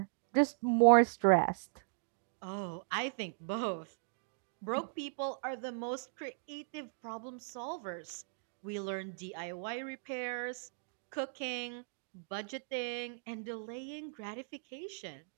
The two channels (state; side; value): silent; left; digital silence